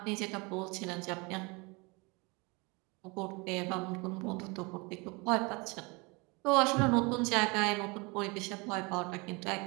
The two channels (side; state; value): left; quieter; 27.7 dB